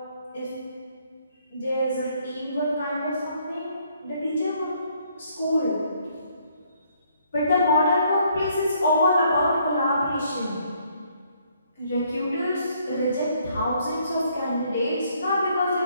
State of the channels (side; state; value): both; inverted; correlation -0.67